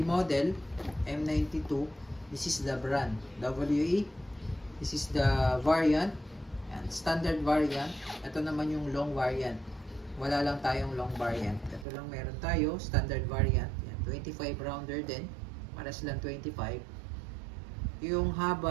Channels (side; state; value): left; drops out; at 11.9 s